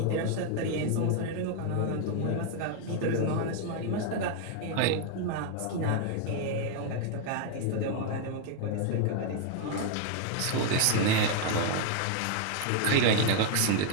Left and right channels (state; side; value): different; both; correlation 0.00